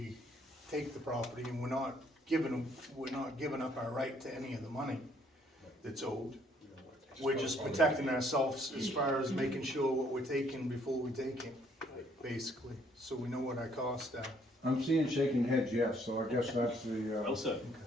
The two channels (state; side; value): normal; both; correlation 0.65